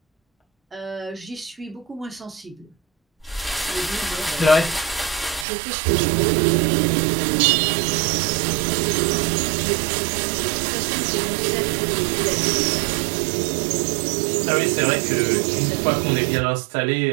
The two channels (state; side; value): drops out; left; at 5.5 s